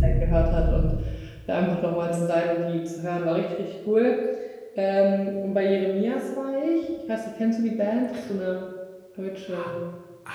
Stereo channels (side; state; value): both; identical; correlation 1.00